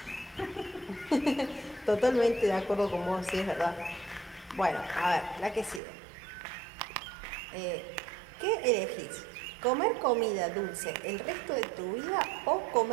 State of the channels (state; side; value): drops out; left; at 5.8 s